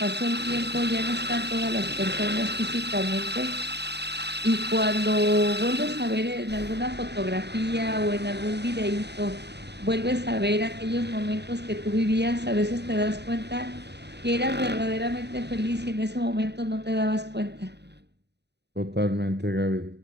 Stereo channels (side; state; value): left; late; 0.49 ms